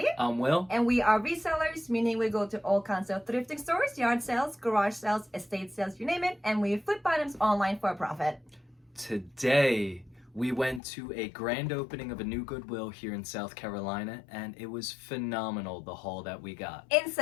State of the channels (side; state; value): right; drops out; at 10.8 s